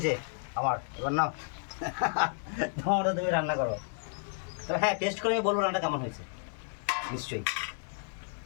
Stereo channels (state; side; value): silent; right; 57 dB below the other